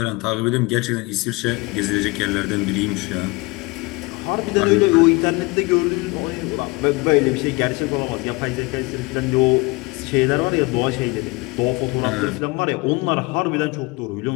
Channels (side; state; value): right; quieter; 25.1 dB